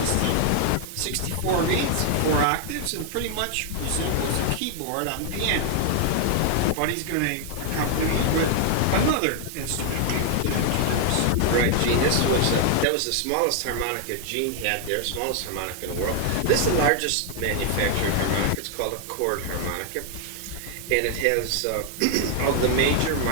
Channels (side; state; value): both; different; correlation 0.00